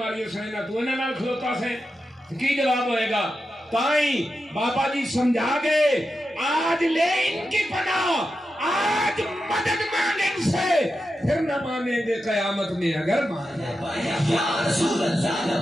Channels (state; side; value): normal; both; correlation 0.89